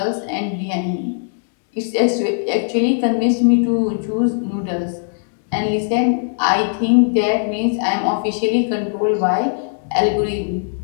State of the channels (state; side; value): silent; right; digital silence